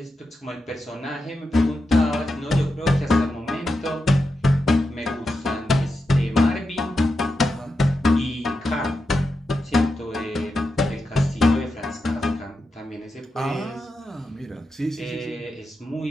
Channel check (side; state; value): both; normal; correlation 0.88